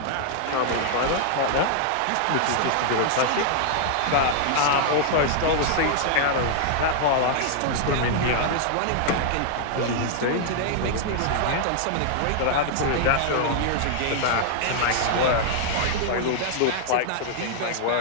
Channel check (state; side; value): different; both; correlation -0.01